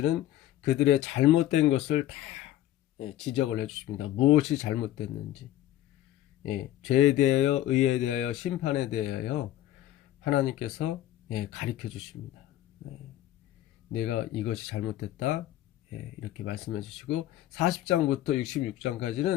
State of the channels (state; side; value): quieter; right; 13.4 dB